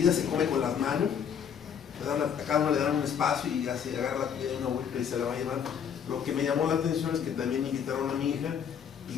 se come con las manos, a cada uno le dan un espacio y ya se agarra la comida de una vuelta y se la va a llevar. Lo que me llamó la atención es que también invitaron a mi hija,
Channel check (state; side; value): quieter; right; 7.9 dB